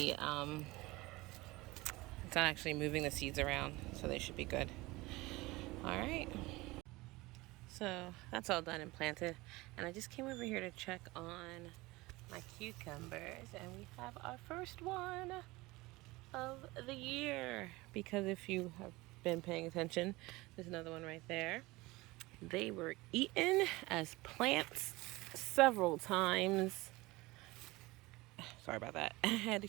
the seeds around, so they should be good. All right. So that's all done and planted. And I just came over here to check on my cucumbers, and we have our first one of the year. Because if you have been paying attention, there's another one right there. They were eaten as plants several times. Sorry about that. I had to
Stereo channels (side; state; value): left; quieter; 21.3 dB